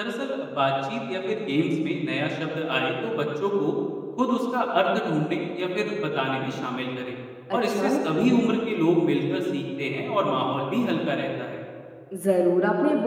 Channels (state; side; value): identical; both; correlation 1.00